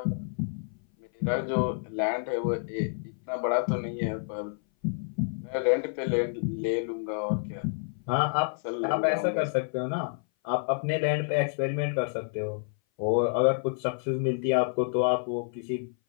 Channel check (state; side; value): silent; right; 57 dB below the other